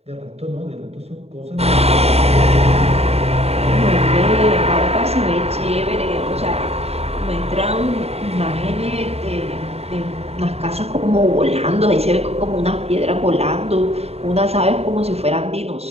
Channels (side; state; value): left; late; 0.30 ms